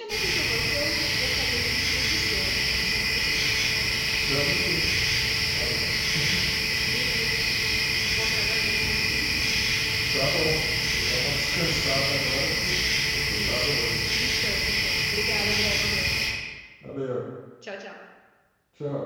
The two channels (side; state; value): both; identical; correlation 1.00